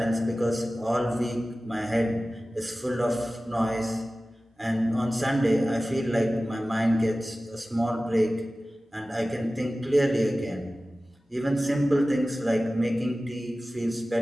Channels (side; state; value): both; normal; correlation 0.96